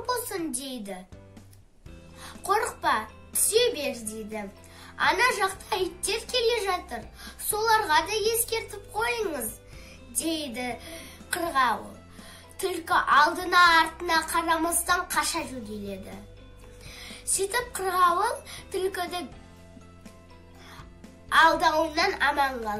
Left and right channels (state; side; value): identical; both; correlation 1.00